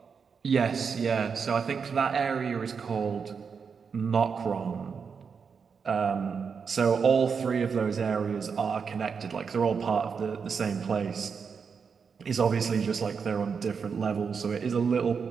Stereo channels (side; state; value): left; quieter; 6.0 dB